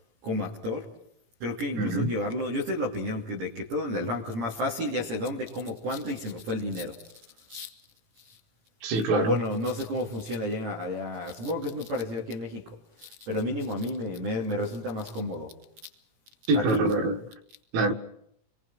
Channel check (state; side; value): late; left; 18 ms